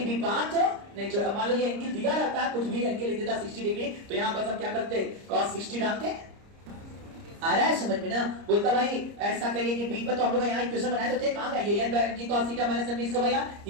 भी पाथ नहीं छोड़े। मान लो ये एंगल दिया रहता है, कुछ भी एंगल लिख देता 60 डिग्री, तो यहां बस हम क्या करते? cos 60 डालते। आ रहा है समझ में ना? बोलता भाई ऐसा करिए कि बी पर तो हम लोग यहाँ इक्वेशन बनाए तो थे, कहां गया ये? n mg cos theta minus mv square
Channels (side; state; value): left; late; 30 ms